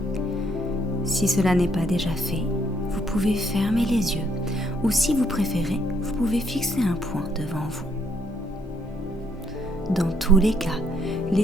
Si cela n'est pas déjà fait, vous pouvez fermer les yeux ou si vous préférez, vous pouvez fixer un point devant vous. Dans tous les cas,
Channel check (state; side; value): normal; both; correlation 0.70